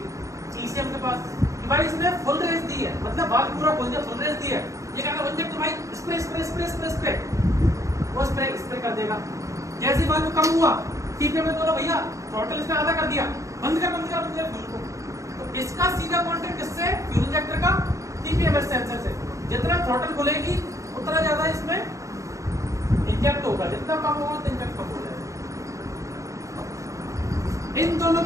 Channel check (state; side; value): late; left; 0.15 ms